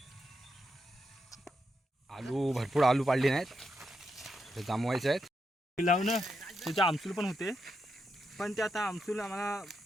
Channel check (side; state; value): both; normal; correlation 0.84